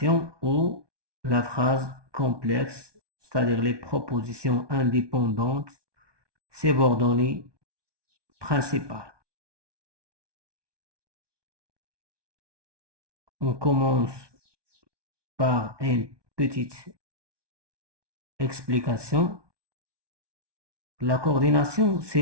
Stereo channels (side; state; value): left; late; 1.2 ms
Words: ou la phrase complexe, c'est-à-dire les propositions indépendantes, subordonnées, principales. On commence par une petite explication. La coordination,